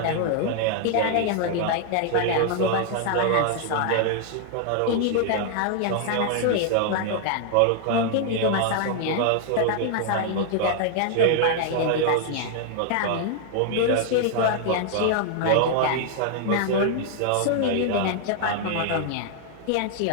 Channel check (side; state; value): both; different; correlation 0.00